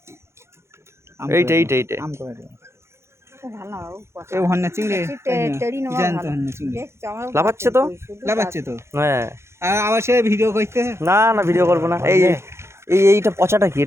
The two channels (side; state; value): left; late; 0.13 ms